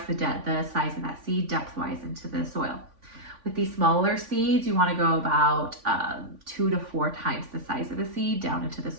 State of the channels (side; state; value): left; late; 3.5 ms